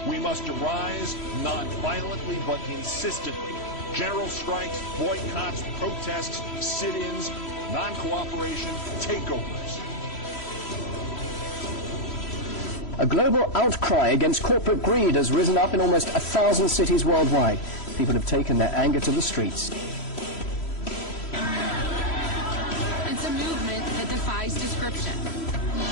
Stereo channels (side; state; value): right; late; 3.1 ms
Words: We must arise not violently but insistently. General strikes, boycotts, protests, sit-ins, non-cooperation, takeovers. A global outcry against corporate greed has risen up in almost 1,000 cities worldwide. People have taken their anger to the streets. It's a movement that defies description.